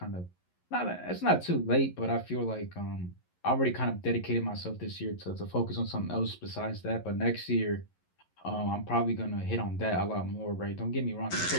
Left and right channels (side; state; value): right; late; 11 ms